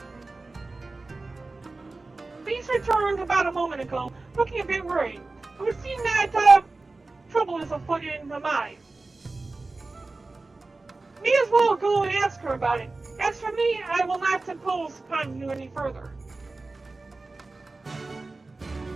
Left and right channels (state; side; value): quieter; left; 3.4 dB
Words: these returned about a moment ago, looking a bit worried. It would seem that trouble is afoot in the mine. May as well go and ask her about it. As for me, I will not impose upon you any further.